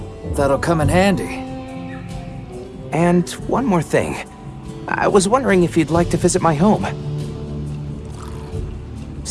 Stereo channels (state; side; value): identical; both; correlation 1.00